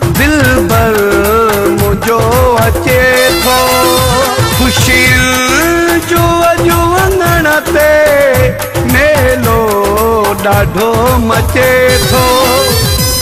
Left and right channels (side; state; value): both; identical; correlation 1.00